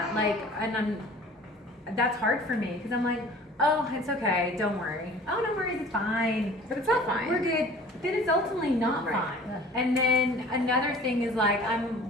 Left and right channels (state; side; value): normal; both; correlation 0.46